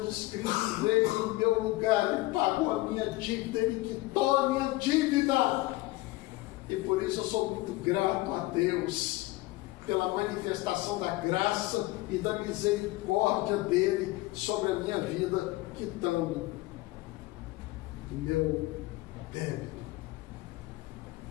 Cristo veio em meu lugar, Ele pagou a minha dívida, Ele quitou a minha dívida. E por isso eu sou muito grato a Deus, pela manifestação da graça e da misericórdia dele sobre a minha vida, quitando o meu débito.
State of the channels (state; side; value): quieter; right; 19.7 dB